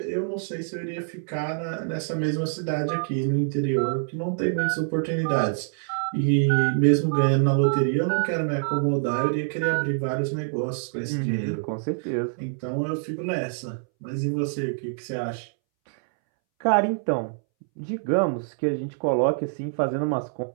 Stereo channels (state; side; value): silent; left; 61 dB below the other